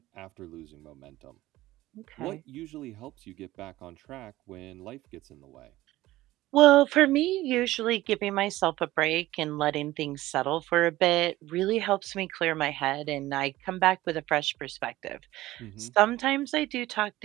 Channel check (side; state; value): left; quieter; 16.8 dB